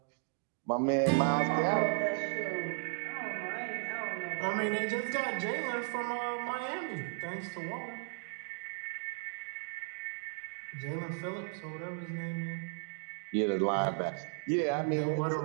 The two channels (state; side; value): silent; left; 54 dB below the other